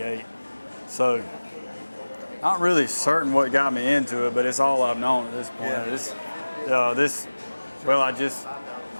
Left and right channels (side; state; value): both; inverted; correlation -1.00